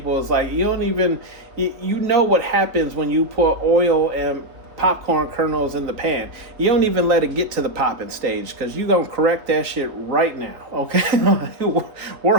is like you don't even what happens when you put oil and popcorn kernels in the pan. You don't even let it get to the popping stage because you're going to correct that shit right now, okay?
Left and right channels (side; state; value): left; late; 3.3 ms